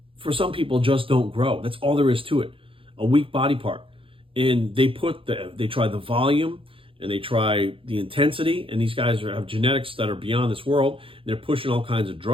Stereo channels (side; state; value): left; late; 0.26 ms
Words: for some people just don't grow. That's all there is to it. A weak body part. And they try the volume, and they try the intensity, and these guys have genetics that are beyond this world. They're pushing all kinds of